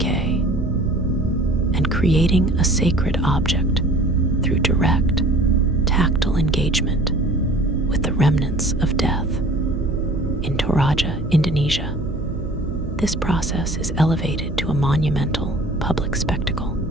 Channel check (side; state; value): right; noise; hum, 9 dB below the sound